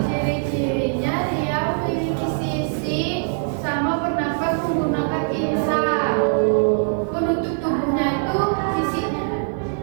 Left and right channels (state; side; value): silent; left; digital silence